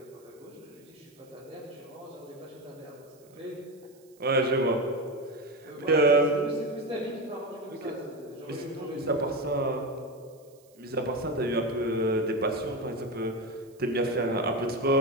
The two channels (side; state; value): right; noise; hiss, 30 dB below the sound